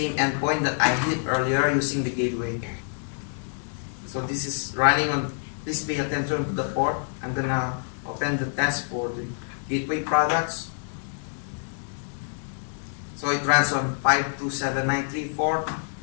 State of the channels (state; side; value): silent; right; digital silence